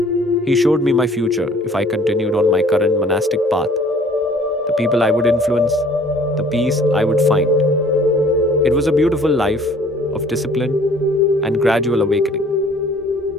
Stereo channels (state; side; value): normal; both; correlation 0.54